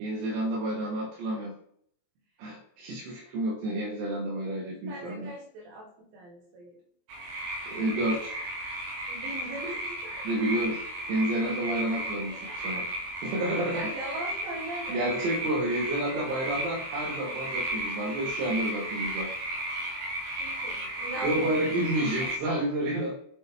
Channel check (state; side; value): late; left; 23 ms